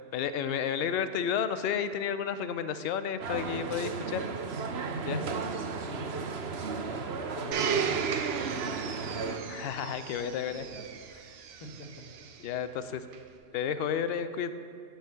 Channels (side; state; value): left; late; 2.8 ms